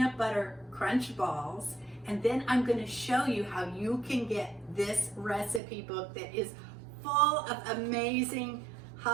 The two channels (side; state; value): left; drops out; at 5.6 s